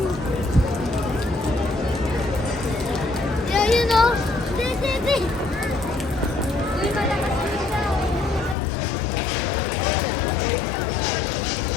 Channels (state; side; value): drops out; right; at 8.6 s